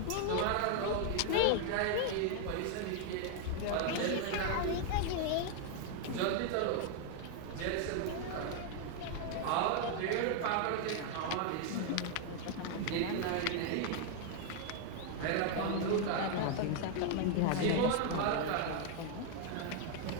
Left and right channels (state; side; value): different; both; correlation 0.00